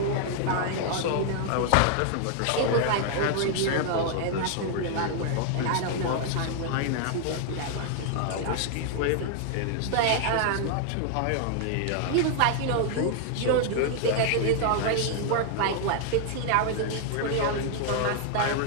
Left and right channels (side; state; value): both; different; correlation 0.00